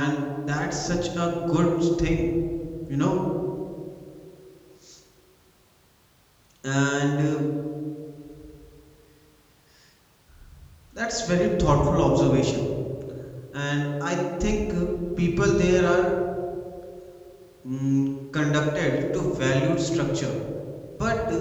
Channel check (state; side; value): identical; both; correlation 1.00